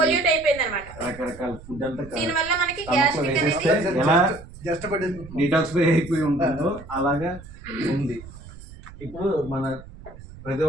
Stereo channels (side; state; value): right; noise; rumble, 17 dB below the sound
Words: పొల్యూట్ అయిపోయింది అనమాట. రకరకాల ఫుడ్ అంతా దీనివల్ల మనకి గ్యాస్ట్రిక్ అనేది ఎలా డిటాక్సిఫై అయిపోయి ఉంటుందో అలాగా ఉంది. ఇప్పుడు మన ప్రతి